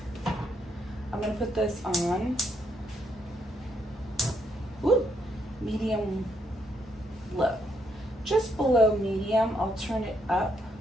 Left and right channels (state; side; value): normal; both; correlation 0.75